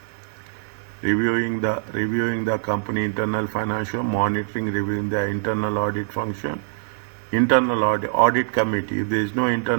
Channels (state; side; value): silent; left; digital silence